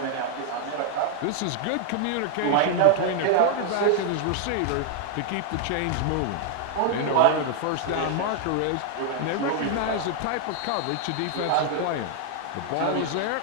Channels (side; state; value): both; different; correlation 0.00